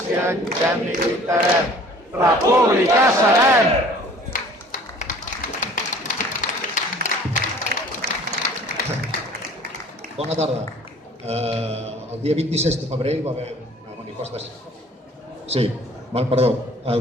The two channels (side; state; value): both; normal; correlation 0.50